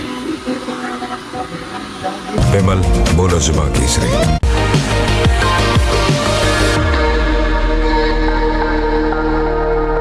विमल बोलो जुबान केसरी।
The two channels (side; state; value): both; identical; correlation 1.00